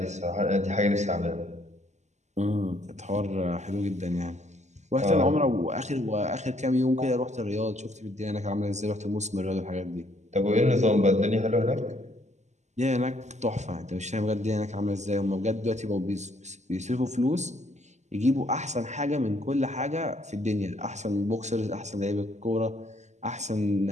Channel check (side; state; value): left; late; 0.33 ms